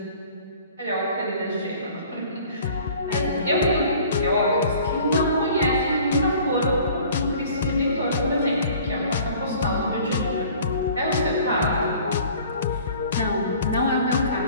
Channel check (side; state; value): both; inverted; correlation -0.49